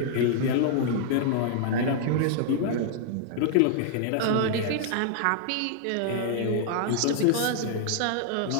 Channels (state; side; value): different; both; correlation -0.01